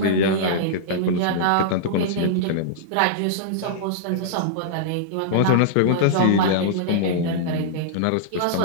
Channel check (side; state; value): both; different; correlation -0.02